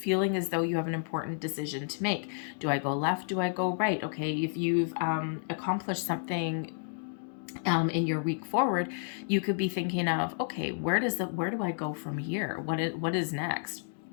as though you have an important decision to make. Do I go left? Do I go right? Okay, if you've accomplished something in your week forward, you could be thinking of, okay, where do I go from here? What is next?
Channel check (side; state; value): right; silent; digital silence